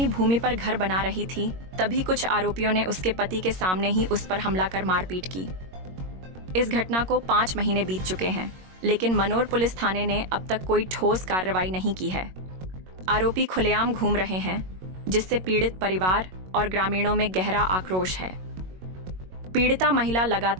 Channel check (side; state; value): left; late; 22 ms